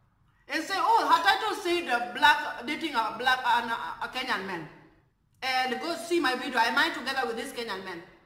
And say, oh, her title said dating a Kenyan man. And go see my video, am I together with this Kenyan man?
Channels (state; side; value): identical; both; correlation 1.00